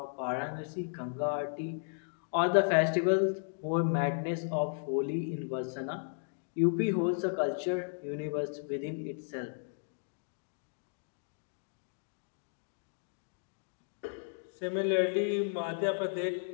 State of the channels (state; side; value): silent; right; digital silence